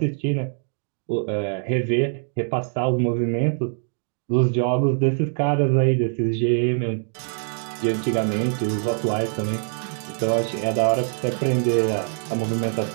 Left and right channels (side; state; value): left; silent; 63 dB below the other